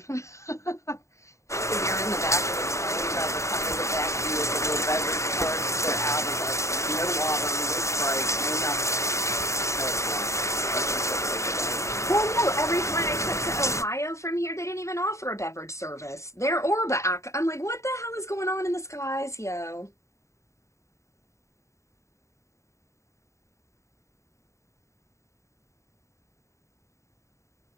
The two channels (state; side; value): late; right; 0.14 ms